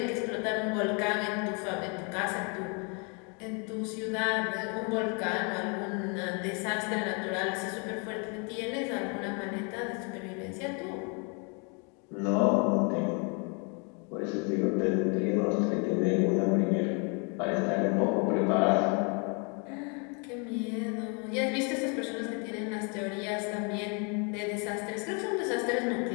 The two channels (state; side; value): quieter; right; 35.0 dB